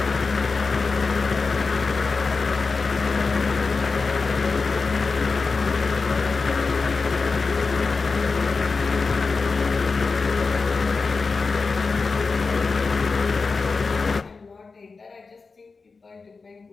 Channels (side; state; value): right; quieter; 4.4 dB